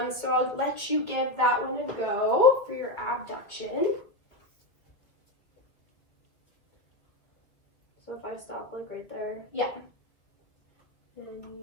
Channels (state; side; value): late; right; 2.3 ms